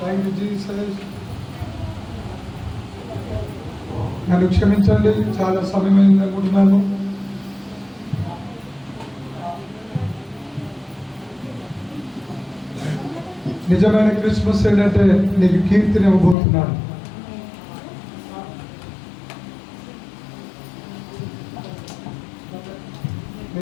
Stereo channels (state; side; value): drops out; right; at 16.4 s